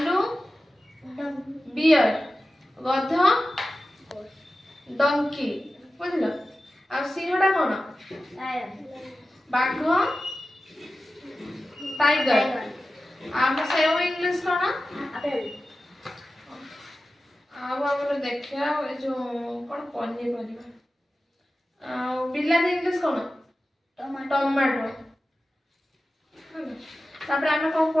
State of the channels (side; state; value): both; normal; correlation 0.94